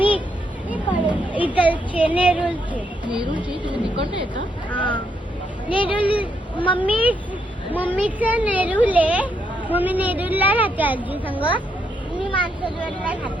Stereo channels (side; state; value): both; normal; correlation 0.77